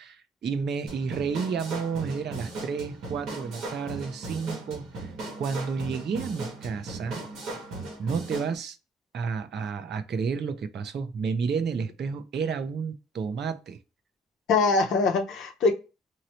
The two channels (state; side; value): normal; both; correlation 0.53